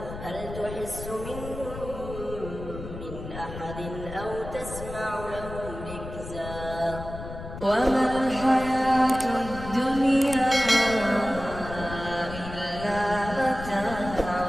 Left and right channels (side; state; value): left; noise; rumble, 10 dB below the sound